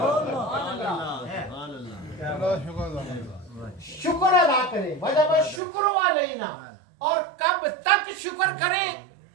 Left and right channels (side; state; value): left; drops out; at 5.6 s